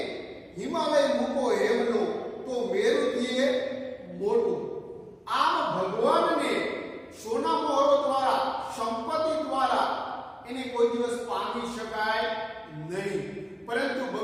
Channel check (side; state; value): both; identical; correlation 1.00